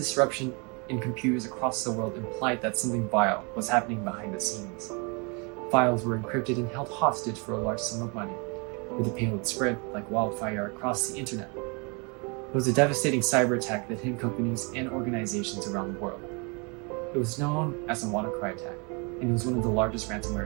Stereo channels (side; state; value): left; quieter; 32.2 dB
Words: in computers across the world implied that something vile was happening behind the scenes. Files were encrypted and held hostage for a large sum of money, where the payload spread like wildfire across the internet. It was a devastating cyber attack that hit companies and organizations around the world. It was known as the WannaCry attack, and it was one of the largest ransomware